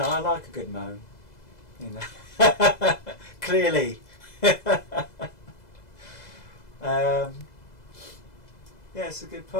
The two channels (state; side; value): late; right; 2.0 ms